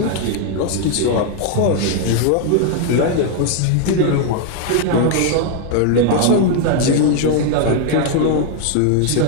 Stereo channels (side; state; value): both; different; correlation 0.00